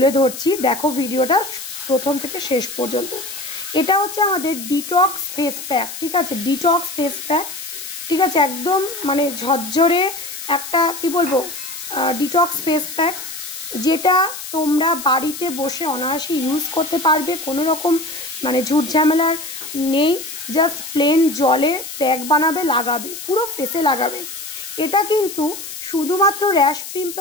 ধরছি, দেখো ভিডিওটা প্রথম থেকে শেষ পর্যন্ত। এটা হচ্ছে আমাদের ডিটক্স ফেস প্যাক। ঠিক আছে, ডিটক্স ফেস প্যাক। ঠিক আছে, একদম মানে ঝরঝরে একটা কি বলবো ডিটক্স ফেস প্যাক, যেটা তোমরা বাড়িতে বসে অনায়াসে ইউজ করতে পারবে। কোনো রকম মানে ঝুট ঝামেলার নেই, জাস্ট প্লেন জলে প্যাক বানাবে, লাগাবে, পুরো ফেসে লাগাবে। এটা কিন্তু শুধুমাত্র র্যাশ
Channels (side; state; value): left; noise; hiss, 10 dB below the sound